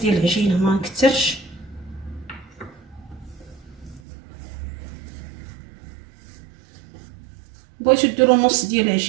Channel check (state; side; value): drops out; left; at 4.0 s